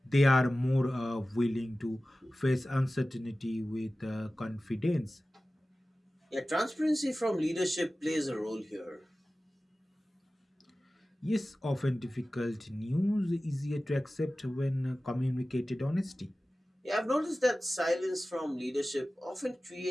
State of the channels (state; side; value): normal; both; correlation 0.96